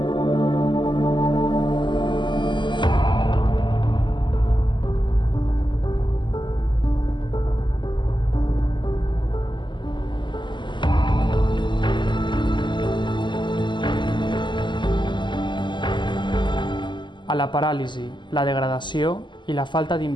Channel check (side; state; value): right; late; 0.22 ms